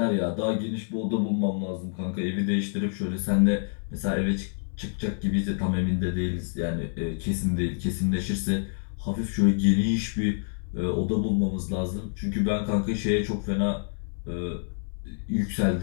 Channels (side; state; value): right; silent; 60 dB below the other